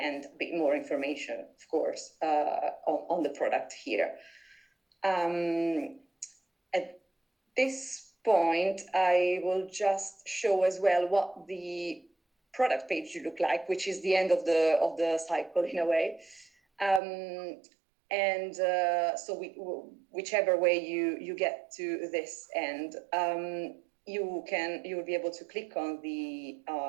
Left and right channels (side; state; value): left; drops out; at 17.0 s